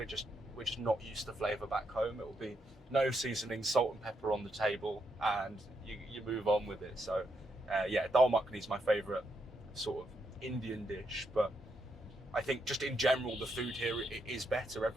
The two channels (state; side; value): normal; both; correlation 0.80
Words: just not used to flavour back home. It will be no seasoning, salt and pepper on the table, and you move on with it. So yeah, dal makhani is my favourite sort of Indian dish, but I think just in general the food here is better.